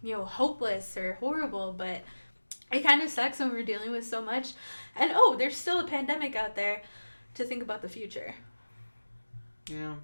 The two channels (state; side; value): inverted; both; correlation -1.00